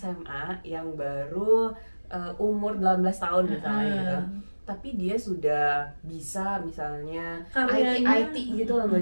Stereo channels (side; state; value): both; inverted; correlation -1.00